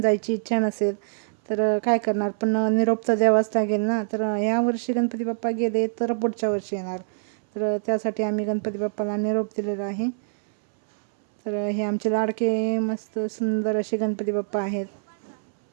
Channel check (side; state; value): left; silent; 62 dB below the other